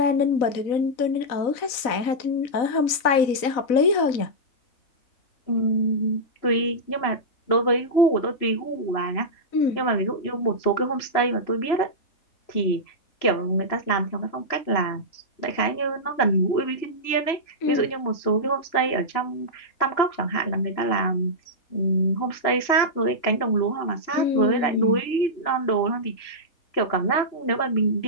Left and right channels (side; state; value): right; late; 3.9 ms